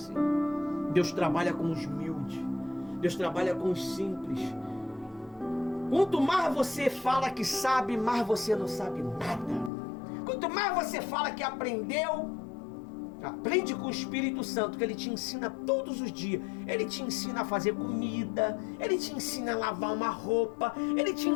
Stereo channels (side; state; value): right; drops out; at 9.7 s